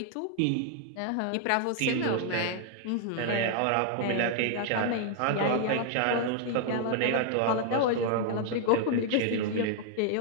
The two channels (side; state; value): both; different; correlation 0.00